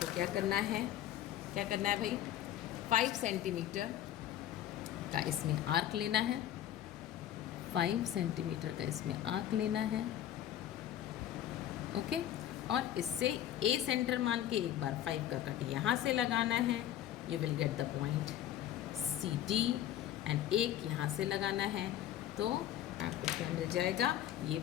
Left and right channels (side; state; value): right; quieter; 11.8 dB